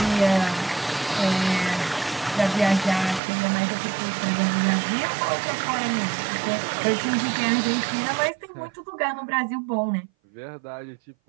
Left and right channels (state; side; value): drops out; left; at 3.2 s